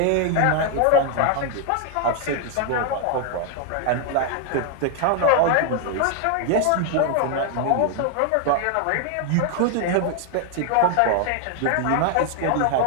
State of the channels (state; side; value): different; both; correlation 0.00